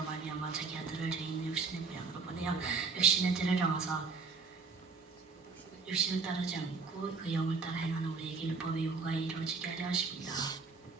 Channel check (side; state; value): left; quieter; 4.6 dB